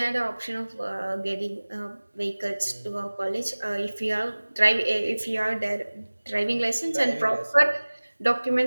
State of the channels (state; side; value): inverted; both; correlation -1.00